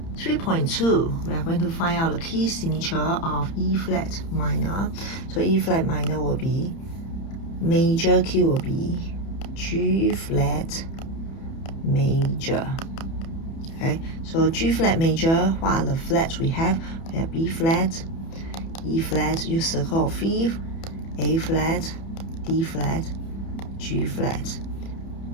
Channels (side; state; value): right; late; 30 ms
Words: 3.2, we are going to find out the key signature of E flat minor. So E flat minor will be, major key will be G flat major. Okay, so G flat major, what are the flats we have? We have B flat, E flat, use circle of fifth, A flat, D flat, G flat,